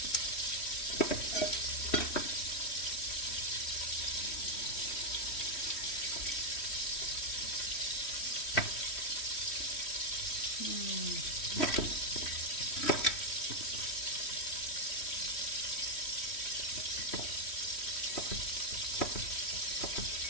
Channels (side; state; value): right; late; 3.1 ms